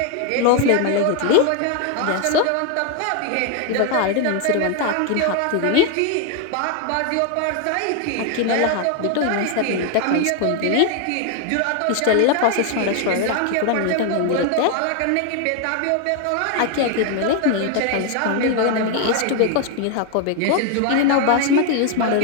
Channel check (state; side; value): different; both; correlation 0.01